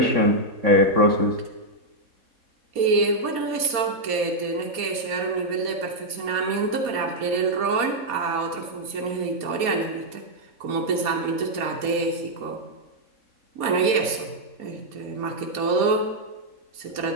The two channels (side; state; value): left; late; 4.2 ms